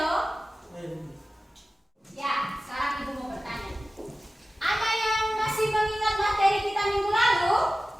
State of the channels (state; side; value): normal; both; correlation 0.96